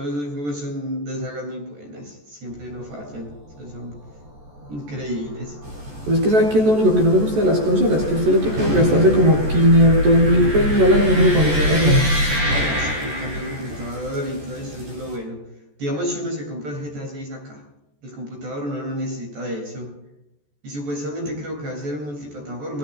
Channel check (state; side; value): late; left; 14 ms